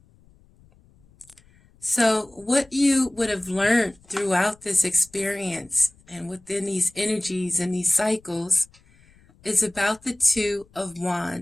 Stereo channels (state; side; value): noise; left; rumble, 29 dB below the sound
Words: So what you would have learned throughout this experience and within these energies and these cycles is about the Two of